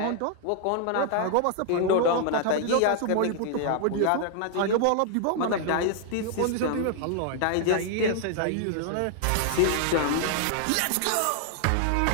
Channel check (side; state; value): both; different; correlation 0.00